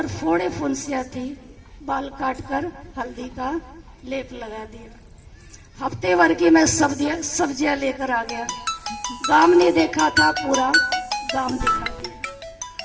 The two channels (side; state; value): both; identical; correlation 1.00